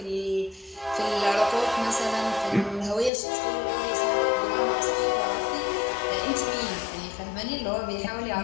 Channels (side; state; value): right; drops out; at 3.1 s